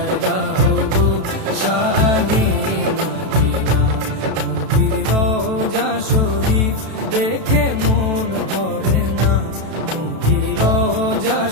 দাও গো শাহে মদিনা। নবীর রোজা শরীফ দেখে মন ভরে না, নবীর রোজা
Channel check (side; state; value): left; late; 32 ms